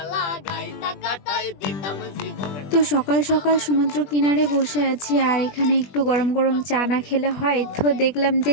তো সকাল সকাল সমুদ্র কিনারে বসে আছি, আর এখানে একটু গরম গরম চা না খেলে হয়। তো দেখলাম যে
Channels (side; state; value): right; late; 21 ms